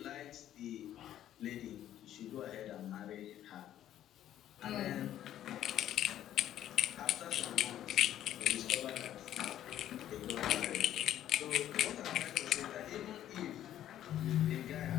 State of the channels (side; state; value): right; quieter; 11.8 dB